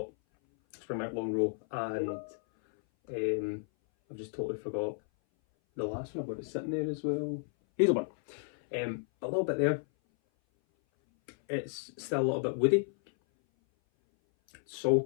Springbank long row, and I've just totally forgot the last one. I've got it sitting there as well. Hazelburn. A little bit there. It's still a little bit woody.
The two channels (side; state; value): right; silent; 56 dB below the other